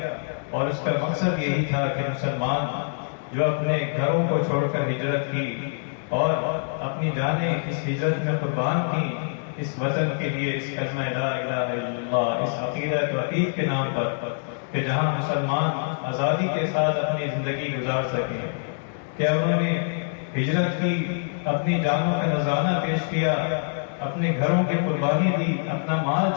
اور اس کا مقصد یہی تھا کہ مسلمان جو اپنے گھروں کو چھوڑ کر ہجرت کی اور اپنی جانیں اس ہجرت میں قربان کی اس وطن کے لیے، اس کلمہ لا الہ الا اللہ، اس عقیدہ توحید کے نام پر، کہ جہاں مسلمان آزادی کے ساتھ اپنی زندگی گزار سکیں. کہ انہوں نے ہجرت کی، اپنی جانوں کا نذرانہ پیش کیا، اپنے گھروں کی قربانی دی، اپنا مال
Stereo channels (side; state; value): right; silent; 62 dB below the other